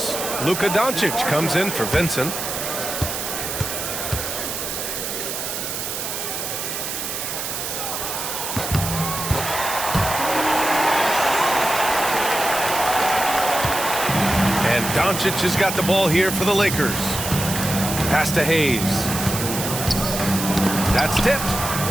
Luka Doncic comes in for Vincent. Doncic has got the ball here for the Lakers. Pass to Hayes. That's tipped.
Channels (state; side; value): noise; right; hiss, 4 dB below the sound